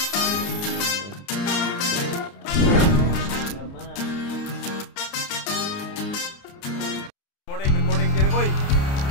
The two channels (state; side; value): late; right; 29 ms